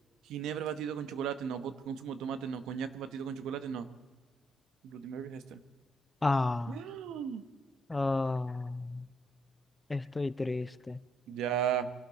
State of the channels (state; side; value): normal; both; correlation 0.72